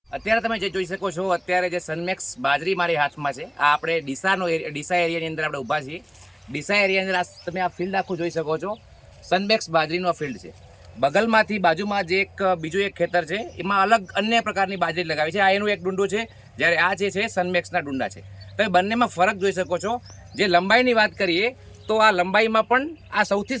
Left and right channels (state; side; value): identical; both; correlation 1.00